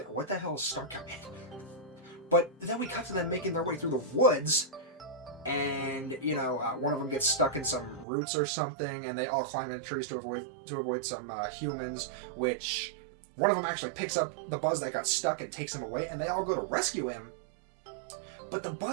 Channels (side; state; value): left; drops out; at 8.1 s